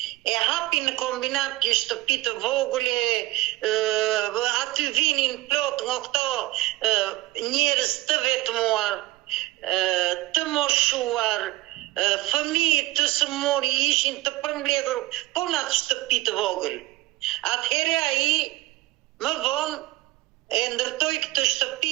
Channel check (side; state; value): left; quieter; 18.9 dB